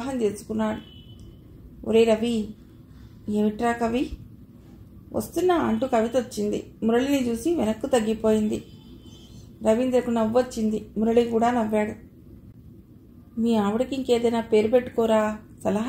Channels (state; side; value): identical; both; correlation 1.00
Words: చేసుకున్నాడు. ఒరే రవి. ఏమిట్రా కవి? వస్తున్నా అంటూ కవిత వచ్చింది. మురళిని చూసి వెనక్కు తగ్గిపోయింది. రవీంద్రకు నవ్వొచ్చింది. మురళి కూడా నవ్వాడు. మీ ఆవిడకి ఇంకేదైనా పేరు పెట్టుకోరా